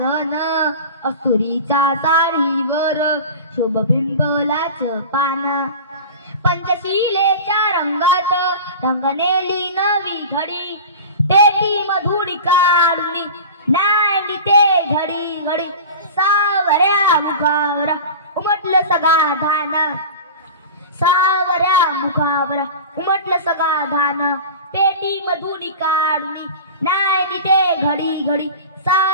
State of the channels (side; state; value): both; inverted; correlation -0.33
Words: अस्तुरीच्या साडीवर शोभ पिंपळाचं पान. पंचशिलेच्या रंगात रंगनेली नवी घडी, पेटी मधुरी काढुनी नांदी ते घडी घडी. सावऱ्या मुखावर उमटलं समाधान, सावऱ्या मुखावर उमटलं समाधान. पेटी मधुरी काढुनी नांदी ते घडी घडी.